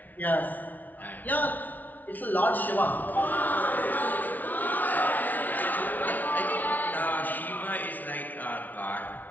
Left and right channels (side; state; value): right; late; 0.080 ms